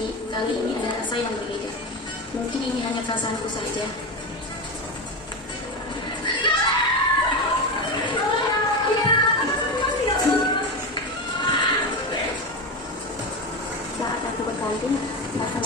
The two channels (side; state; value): both; normal; correlation 0.18